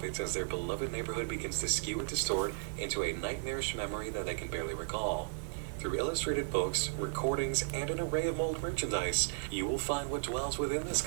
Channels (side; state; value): left; silent; 54 dB below the other